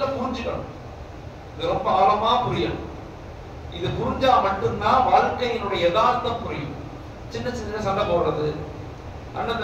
புரிஞ்சுக்கணும். இது ரொம்ப ஆழமா புரியணும். இது புரிஞ்சா மட்டும்தான் வாழ்க்கையினுடைய யதார்த்தம் புரியும். சின்ன சின்ன சண்டை போடுறது, அண்ணன்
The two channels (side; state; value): both; identical; correlation 1.00